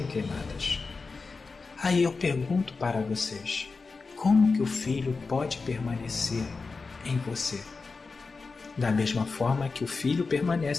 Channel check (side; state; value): right; quieter; 4.3 dB